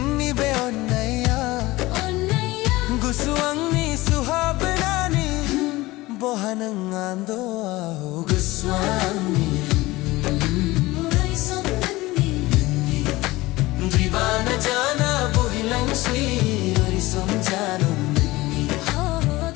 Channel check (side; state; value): right; quieter; 19.7 dB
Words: बे ओन्नैया गुसुअंगनी सुहाबनानी बोहनंग आंदो आओ गुसुअंगनी Dibana jana bohilang swi arisam janu ninni oh